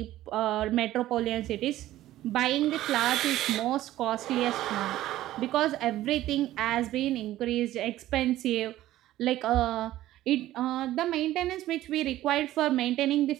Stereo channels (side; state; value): left; quieter; 14.6 dB